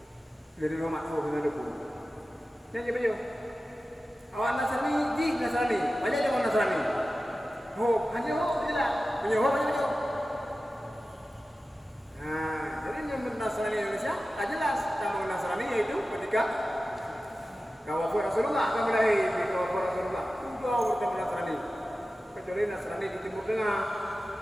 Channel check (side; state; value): both; normal; correlation 0.95